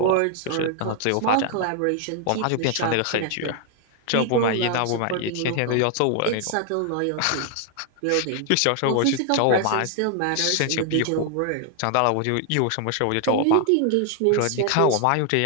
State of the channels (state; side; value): different; both; correlation 0.00